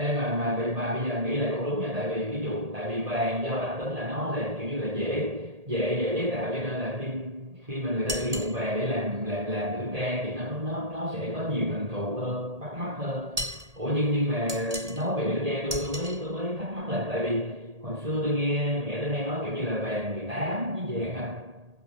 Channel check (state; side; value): late; left; 1.8 ms